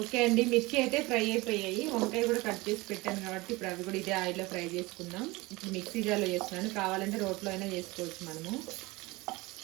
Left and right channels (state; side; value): quieter; left; 22.4 dB